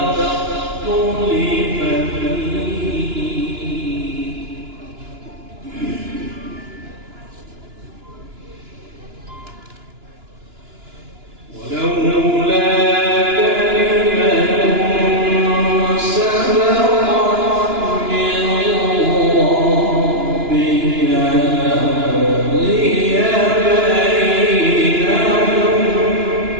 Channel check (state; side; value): late; left; 2.9 ms